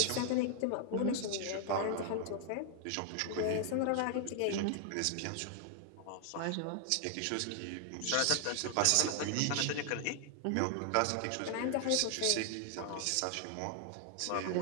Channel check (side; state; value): both; different; correlation 0.00